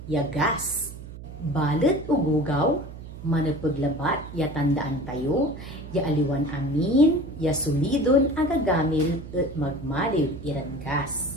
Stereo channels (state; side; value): noise; right; hum, 13 dB below the sound